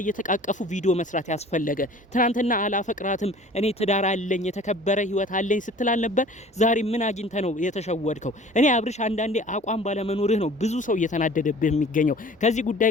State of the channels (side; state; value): both; normal; correlation 0.46